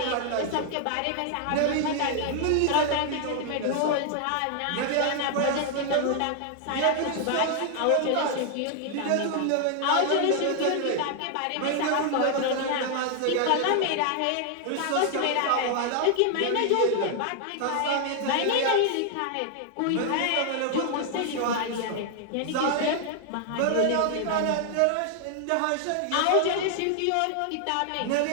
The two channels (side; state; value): both; different; correlation 0.00